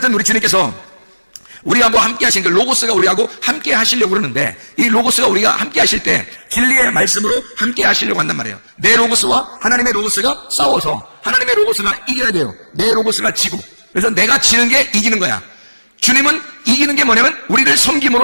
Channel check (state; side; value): inverted; both; correlation -1.00